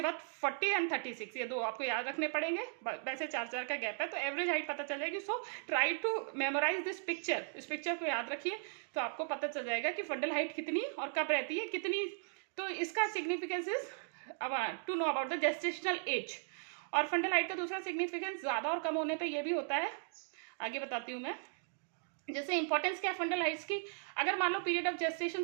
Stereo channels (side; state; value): left; silent; digital silence